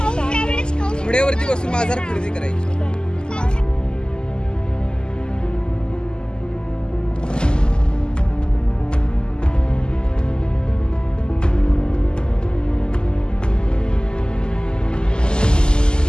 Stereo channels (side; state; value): right; late; 0.047 ms